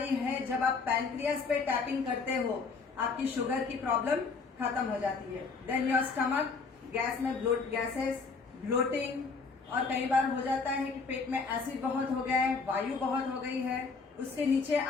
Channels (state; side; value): quieter; right; 4.6 dB